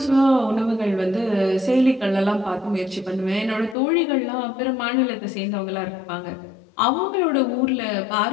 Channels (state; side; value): drops out; right; at 3.8 s